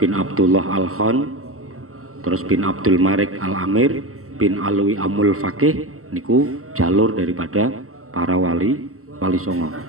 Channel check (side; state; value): left; late; 0.63 ms